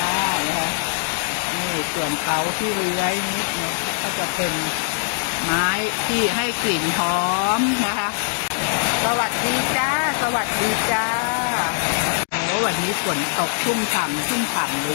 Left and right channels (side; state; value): right; silent; digital silence